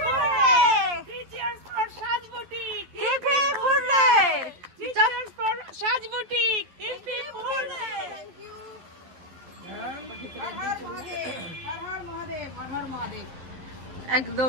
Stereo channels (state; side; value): late; left; 11 ms